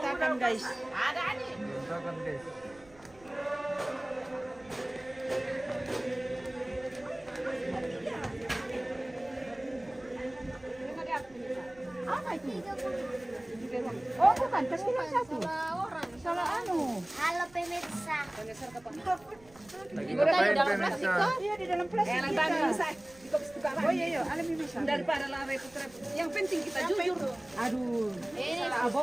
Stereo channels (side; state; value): right; noise; rumble, 26 dB below the sound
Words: guys. Ada ani. Berantakan, guys. Apa itu? Oh bukan, pasti yang satu. Salah anu. Halo pemirsa. Lagi ngapain pemirsa? Iya di dalam plastik. Oh iya iya, alam bisa. Daripada lah repot-repot. Yang penting kita jujur. Aduh, Ini salah